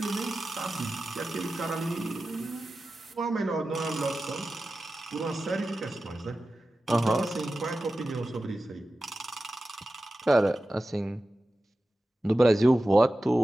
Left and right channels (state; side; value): normal; both; correlation 0.94